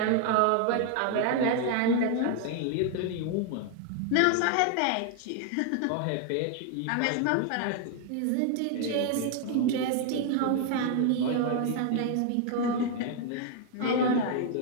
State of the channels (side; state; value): both; different; correlation 0.00